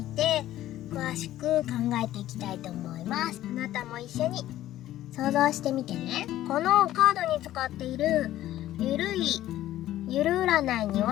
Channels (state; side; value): quieter; right; 13.8 dB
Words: て詳しく考えていきたいと思います。あなたも一緒に想像してみてね。このカードに使っているゆる占いに